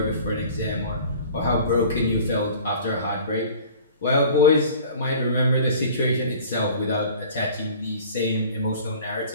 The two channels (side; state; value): both; inverted; correlation -0.45